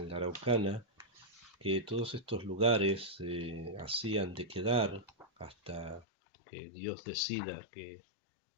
la Araucana, que todos estos lugares hacían de quedar hasta que Dios decida que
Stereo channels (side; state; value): right; drops out; at 6.1 s